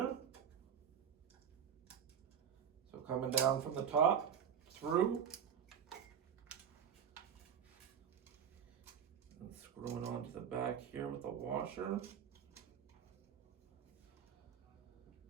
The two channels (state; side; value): quieter; left; 8.1 dB